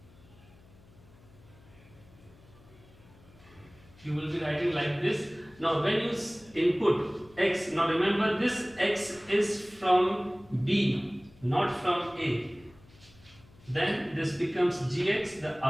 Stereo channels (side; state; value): left; noise; hum, 25 dB below the sound